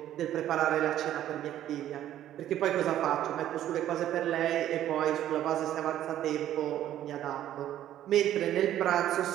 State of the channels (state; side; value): quieter; left; 12.0 dB